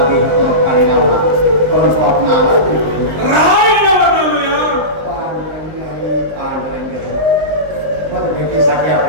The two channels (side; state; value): left; late; 19 ms